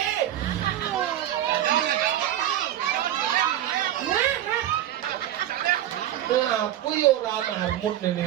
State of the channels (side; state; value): left; quieter; 12.3 dB